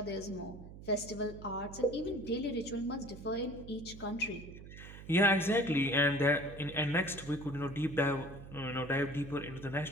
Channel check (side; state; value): right; noise; hum, 14 dB below the sound